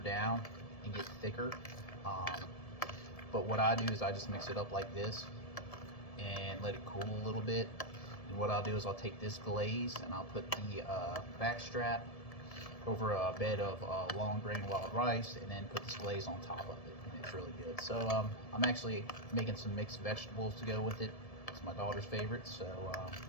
and get thicker. But what I do is I just mix it up like this and let it cool a little bit. And what I'll do is I'll take this glaze and I'll put the back strap over a bed of long grain wild rice and then put this glaze on top of it. And it's really good. So I'm actually making some mixed vegetables to go with it. It's my daughter's favorite. So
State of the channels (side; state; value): right; late; 1.7 ms